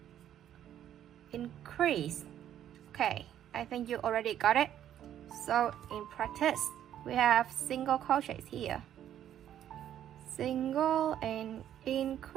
increase. Okay, I think you already got it. So in practice, we have single crochets here, single and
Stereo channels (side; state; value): left; quieter; 10.8 dB